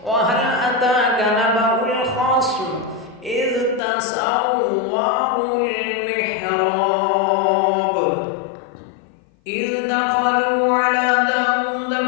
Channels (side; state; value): right; drops out; at 3.8 s